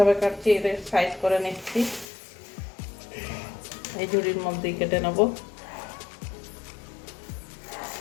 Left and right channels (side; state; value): right; drops out; at 2.1 s